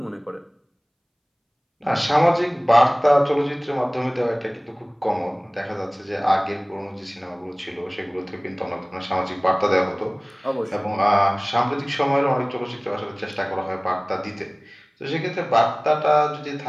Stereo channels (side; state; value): both; identical; correlation 1.00